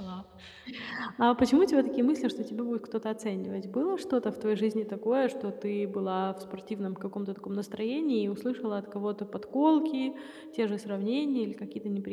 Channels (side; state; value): both; identical; correlation 1.00